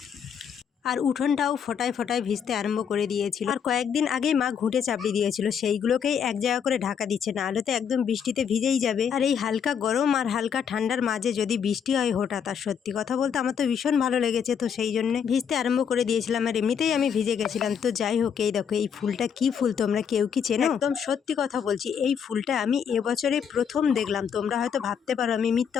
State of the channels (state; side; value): quieter; right; 7.5 dB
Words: আর উঠোনটাও ফোটায় ফোটায় ভিজতে আরম্ভ করে দিয়েছিল। আর কয়েকদিন আগেই মা ঘুঁটে চাপড়ি দিয়েছিল, সেইগুলোকেই এক জায়গা করে ঢাকা দিচ্ছে, না হলে তো একদম বৃষ্টিতে ভিজেই যাবে। আর এই হালকা গরম আর হালকা ঠান্ডার মাঝে যদি বৃষ্টি হয় হঠাৎ, আর সত্যি কথা বলতে আমার তো ভীষণ ভালো লেগেছে, তো সেই জন্য ভিজতে আরম্ভ করে দিয়েছিলাম। আর এমনিতেই আমি ভিজে গেছিলাম। তো যাই হোক, এই দেখো এই ফুলটা কি ফুল তোমরা কেউ কি চেনো? একদম সত্যি কথা বলছি, এই ফুলটা আমি এবছরে প্রথম দেখলাম। তোমরা হয়তো ভাবতে পারো আমি মিথ্যা